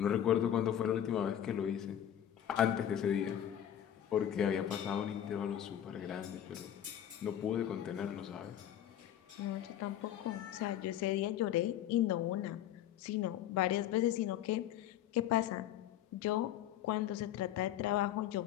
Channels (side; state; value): right; quieter; 10.9 dB